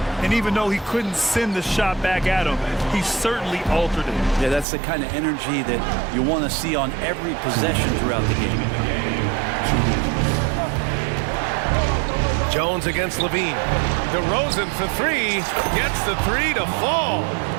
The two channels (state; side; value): drops out; left; at 4.7 s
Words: And even though he couldn't send the shot back at him, he certainly altered it. Yeah, that's the kind of energy that you want to see on every possession throughout the game. Jones against Levine. DeRozan for 3. Gets the 3 to fall.